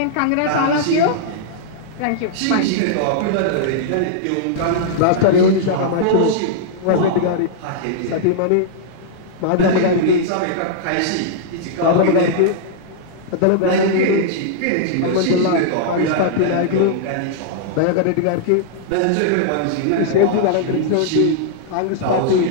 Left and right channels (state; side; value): different; both; correlation -0.01